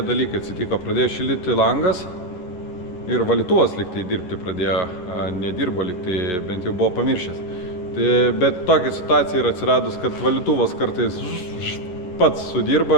dalykai atsitiko, pradėjo šildyti langas ir valytuvas liktai dirbti pradėjo, nedirbo liktai, bent jau buvo pamiršęs. Bet tokia situacija yra atsiradus, kad valytuvas kartais pats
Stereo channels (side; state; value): right; late; 11 ms